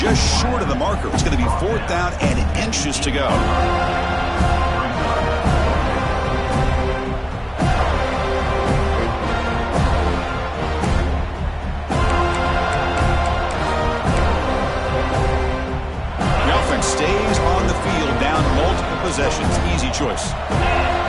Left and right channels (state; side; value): identical; both; correlation 1.00